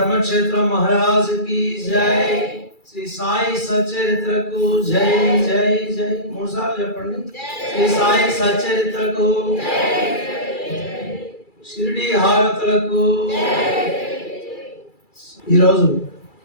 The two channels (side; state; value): right; late; 2.3 ms